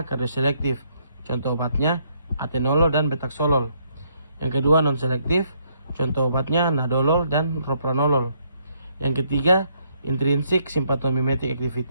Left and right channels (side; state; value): both; inverted; correlation -0.71